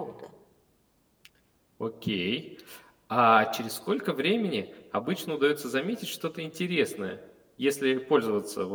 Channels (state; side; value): identical; both; correlation 1.00